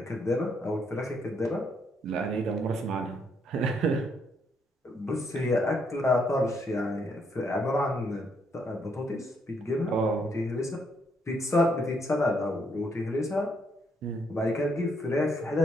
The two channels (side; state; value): both; normal; correlation 0.73